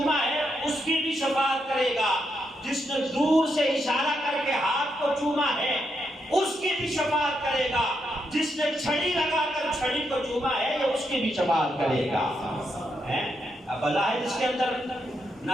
ہے اس کی بھی شفاعت کرے گا. جس نے دور سے اشارہ کر کے ہاتھ کو چوما ہے اس کی بھی شفاعت کرے گا. جس نے چھڑی لگا کر چھڑی کو چوما ہے یہ اس کی بھی شفاعت کرے گا. اب بظاہر اس کے اندر نہ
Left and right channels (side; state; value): both; normal; correlation 0.81